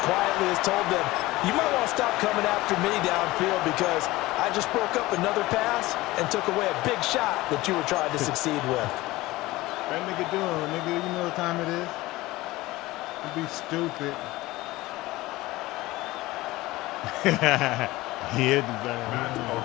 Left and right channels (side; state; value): right; quieter; 19.0 dB